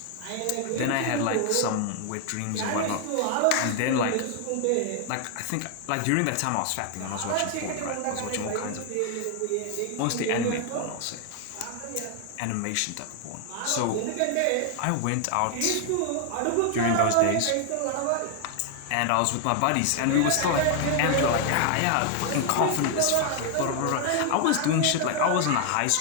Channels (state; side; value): different; both; correlation 0.00